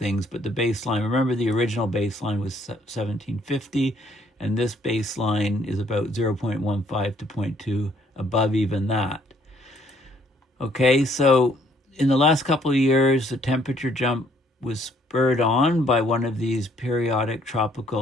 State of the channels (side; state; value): both; normal; correlation 0.65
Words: but the baseline, remember the original baseline was 1750, and this baseline is about 0.15 to 0.2 above even that. Okay, so in the last couple of years, the temperature jump was spurred on by one of these periodic